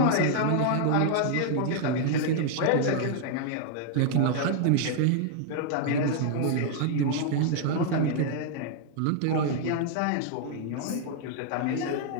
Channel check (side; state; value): both; different; correlation 0.00